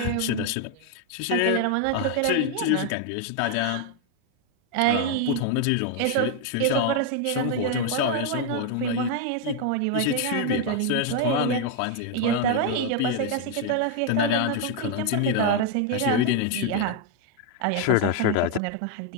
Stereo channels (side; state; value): both; different; correlation 0.01